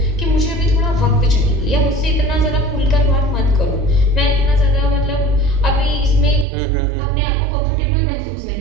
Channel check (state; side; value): drops out; left; at 6.5 s